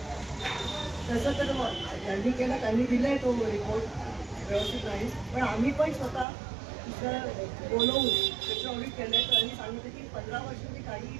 तसं तर त्यांनी केलं, त्यांनी दिलाय तो रिपोर्ट व्यवस्थित नाही. पण आम्ही पण स्वतः बोलवून त्याचं ऑडिट केलं आहे. त्यांनी सांगितलं की 15 वर्षांनी काहीही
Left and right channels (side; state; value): left; drops out; at 6.2 s